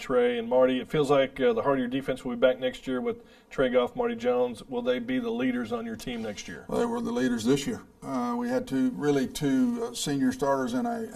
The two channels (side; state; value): both; identical; correlation 1.00